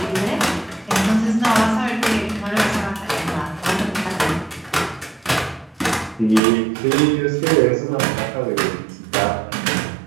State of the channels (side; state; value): left; drops out; at 6.4 s